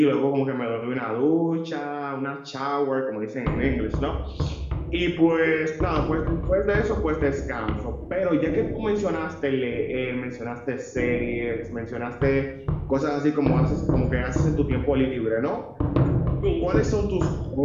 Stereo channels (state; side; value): identical; both; correlation 1.00